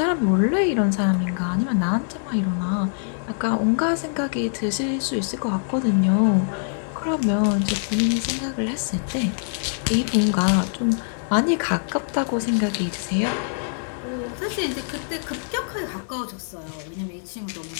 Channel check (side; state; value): right; silent; 63 dB below the other